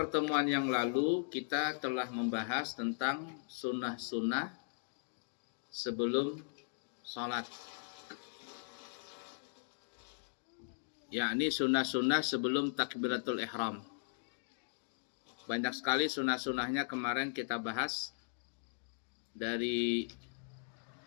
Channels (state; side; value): silent; right; digital silence